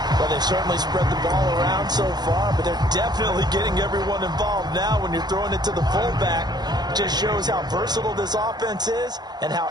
Well, they've certainly spread the ball around so far, but they're definitely getting everyone involved now when you're throwing it to the fullback. Just shows how versatile this offense is and how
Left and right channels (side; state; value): left; late; 0.20 ms